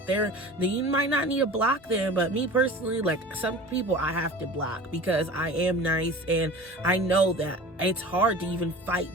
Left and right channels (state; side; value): normal; both; correlation 0.39